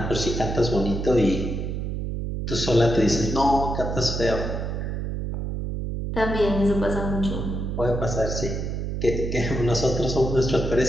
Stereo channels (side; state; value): right; noise; hum, 3 dB below the sound